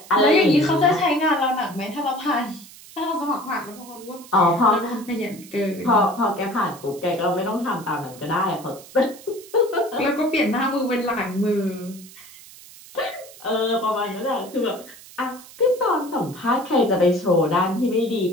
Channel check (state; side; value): noise; right; hiss, 19 dB below the sound